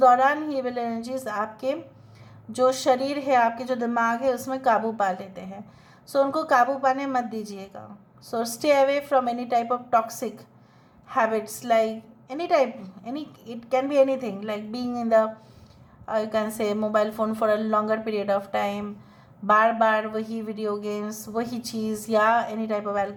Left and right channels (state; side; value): identical; both; correlation 1.00